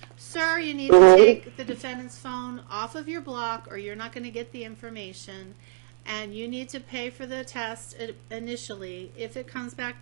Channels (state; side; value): silent; left; digital silence